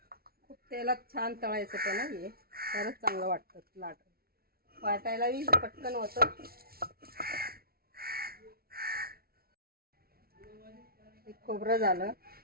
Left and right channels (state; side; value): late; left; 0.44 ms